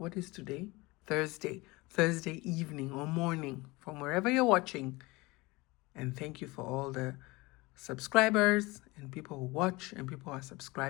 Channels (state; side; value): quieter; right; 23.1 dB